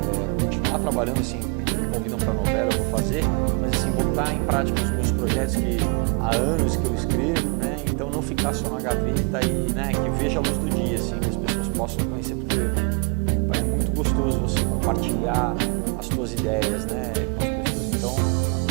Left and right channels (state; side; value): quieter; left; 35.8 dB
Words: continuar trabalhando, assim, me convidam para novela, eu vou fazer, mas assim, botar em prática os meus projetos que há anos que eu escrevo, né? Então não ficar só na gaveta e, né, que veja a luz do dia, assim, que as pessoas possam conhecer, porque é muito gostoso você compartilhar as suas ideias, né, com as pessoas. Então,